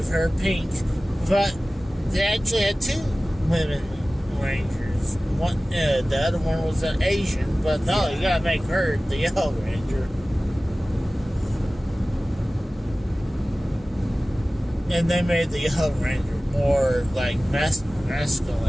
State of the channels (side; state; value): both; normal; correlation 0.97